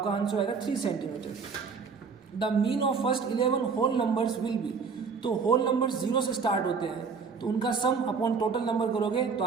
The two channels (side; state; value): left; quieter; 5.3 dB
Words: आंसर आएगा 3 centimetre. The mean of first 11 whole numbers will be. तो होल नंबर्स 0 से स्टार्ट होते हैं तो उनका सम अपॉन टोटल नंबर करोगे तो